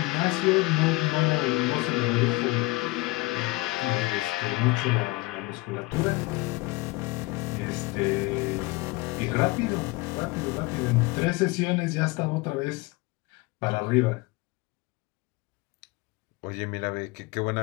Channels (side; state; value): right; quieter; 22.1 dB